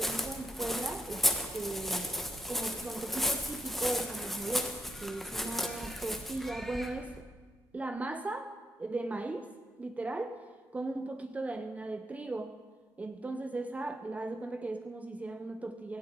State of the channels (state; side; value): normal; both; correlation 0.80